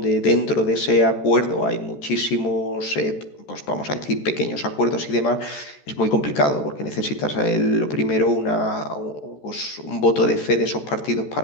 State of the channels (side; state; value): right; late; 14 ms